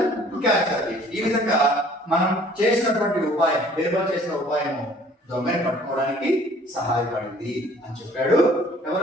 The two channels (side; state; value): both; normal; correlation 0.54